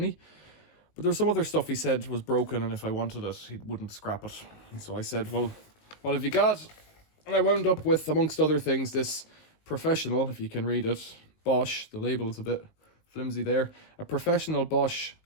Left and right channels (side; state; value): right; late; 19 ms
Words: But there was some other stuff he said was broken, and if I wanted it, he wouldn't scrap it. And so I said, well, what have you got? And I wound up with, amongst other things, this Professional, if you can read it, Bosch, the label's a bit flimsy there, a Professional Bosch